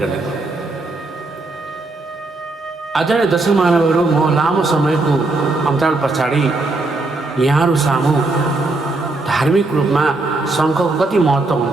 गर्दै आदरणीय दर्शक महानुभावहरू, म लामो समयको अन्तराल पछाडि यहाँहरू सामु धार्मिक रूपमा शङ्खको कति महत्त्व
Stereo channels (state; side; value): quieter; left; 3.2 dB